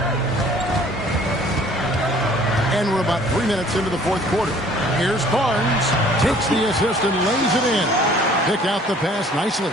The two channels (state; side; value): normal; both; correlation 0.54